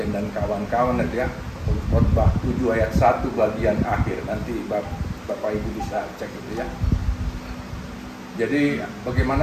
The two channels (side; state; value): both; identical; correlation 1.00